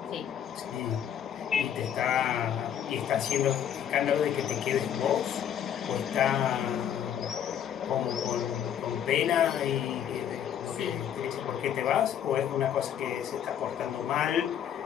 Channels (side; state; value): right; quieter; 9.4 dB